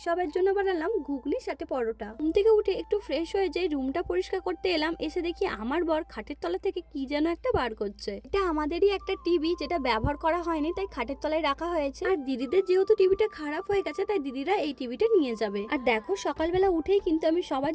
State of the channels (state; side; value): identical; both; correlation 1.00